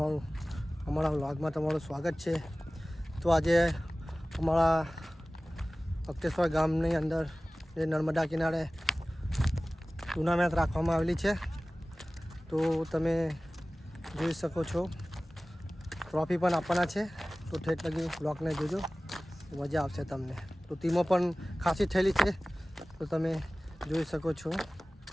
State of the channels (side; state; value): both; normal; correlation 0.97